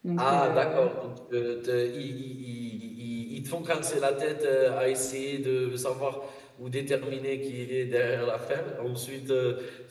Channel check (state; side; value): identical; both; correlation 1.00